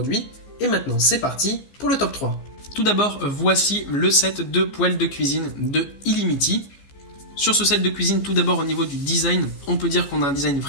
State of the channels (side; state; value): right; late; 15 ms